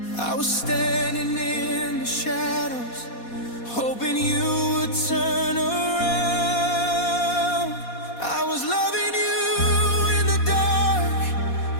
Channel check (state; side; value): late; right; 4.2 ms